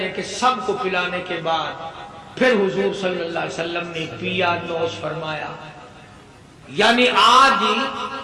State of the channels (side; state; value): both; identical; correlation 1.00